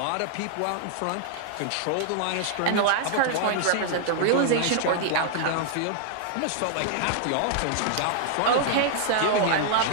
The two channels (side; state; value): both; different; correlation -0.01